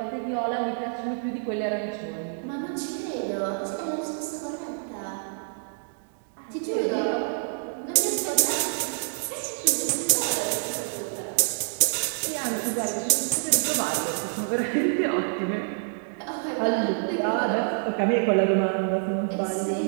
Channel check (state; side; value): silent; left; digital silence